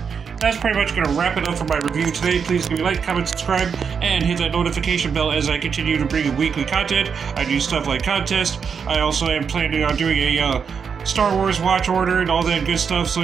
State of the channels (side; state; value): left; quieter; 6.4 dB